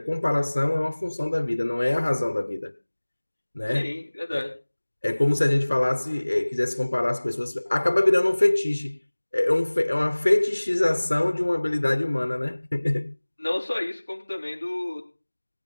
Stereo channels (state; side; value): inverted; both; correlation -1.00